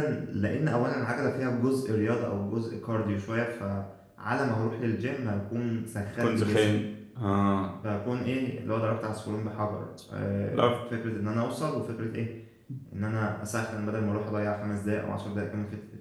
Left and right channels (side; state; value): both; identical; correlation 1.00